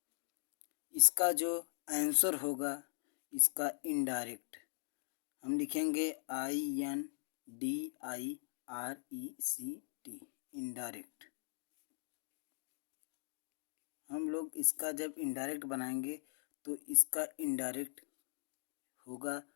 इसका जो आंसर होगा इसका इनडायरेक्ट हम लिखेंगे INDIRECT इनडायरेक्ट। हम लोग इसका जब इनडायरेक्ट बनाएंगे तो इसका इनडायरेक्ट होगा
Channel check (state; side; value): silent; right; digital silence